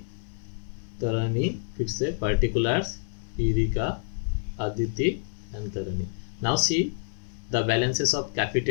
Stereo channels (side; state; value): right; silent; 60 dB below the other